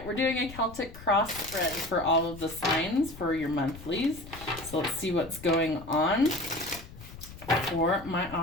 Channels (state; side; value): noise; left; rumble, 15 dB below the sound